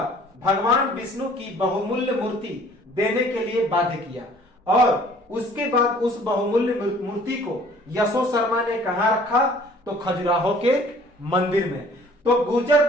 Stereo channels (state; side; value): normal; both; correlation 0.54